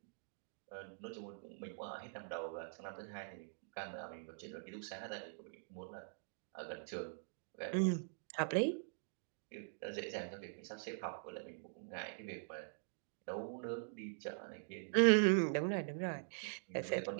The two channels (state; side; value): silent; left; digital silence